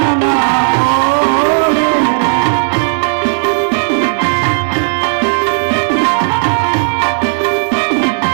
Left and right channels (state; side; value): silent; left; digital silence